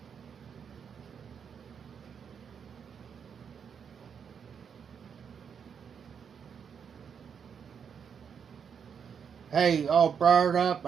Hey, all brought up,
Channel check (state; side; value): quieter; left; 7.1 dB